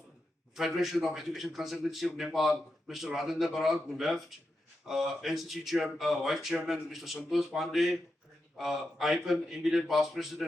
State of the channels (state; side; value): normal; both; correlation 0.88